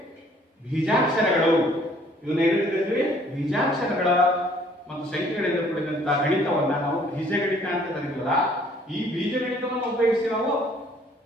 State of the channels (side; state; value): both; normal; correlation 0.59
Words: ಬೀಜಾಕ್ಷರಗಳು, ಇವನ್ನ ಏನಿರ್ತೀವಿ? ಬೀಜಾಕ್ಷರಗಳ ಮತ್ತು ಸಂಖ್ಯೆಗಳಿಂದ ಕೂಡಿದಂತಹ ಗಣಿತವನ್ನ ನಾವು ಬೀಜಗಣಿತ ಅಂತ ಕರೀತೀವಲ್ಲ, ಈ ಬೀಜಗಣಿತವನ್ನು ಉಪಯೋಗಿಸಿ ನಾವು